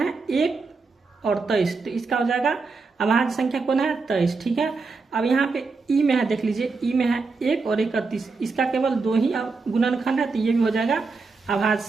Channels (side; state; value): left; quieter; 4.3 dB